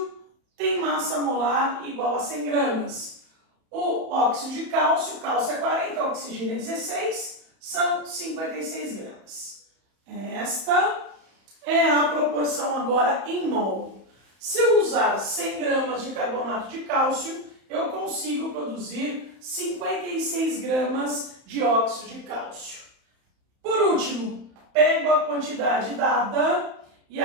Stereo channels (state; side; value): late; left; 31 ms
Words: tem massa molar igual a 100 gramas. O óxido de cálcio, cálcio é 40, oxigênio é 16, são 56 gramas. Esta é a proporção agora em mol. Se eu usar 100 gramas de carbonato de cálcio, eu consigo produzir 56 gramas de óxido de cálcio. Por último, pego a quantidade dada, e